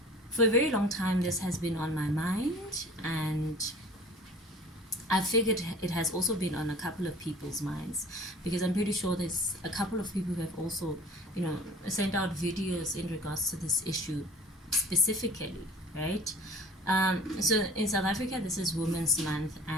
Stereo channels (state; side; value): normal; both; correlation 0.46